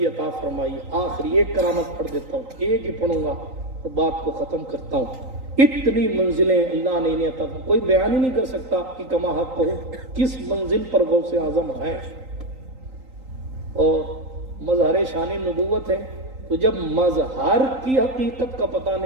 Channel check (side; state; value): left; late; 3.8 ms